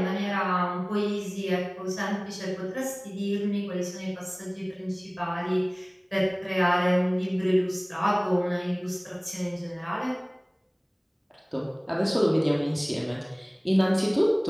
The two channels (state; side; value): identical; both; correlation 1.00